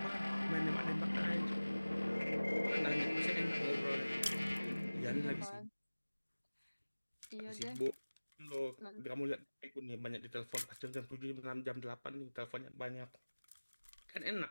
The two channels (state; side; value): inverted; both; correlation -1.00